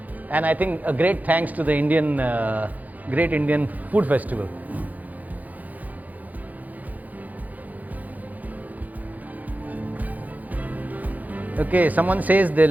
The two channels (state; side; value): late; left; 0.080 ms